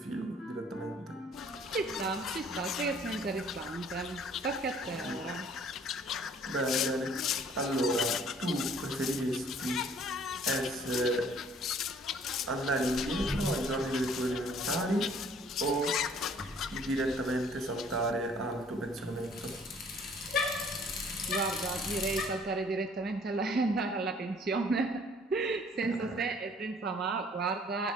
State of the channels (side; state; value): both; normal; correlation 0.57